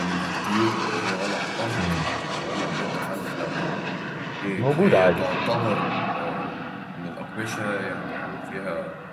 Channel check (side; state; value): both; identical; correlation 1.00